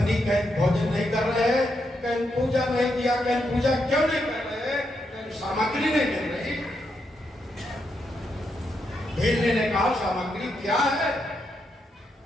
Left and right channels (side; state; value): both; normal; correlation 0.81